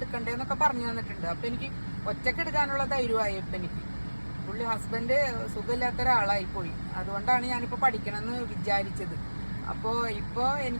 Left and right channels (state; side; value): inverted; both; correlation -1.00